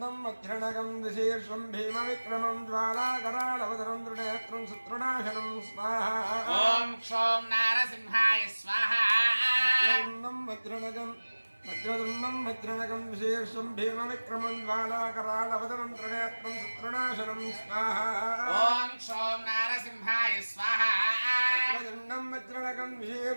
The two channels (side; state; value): both; inverted; correlation -1.00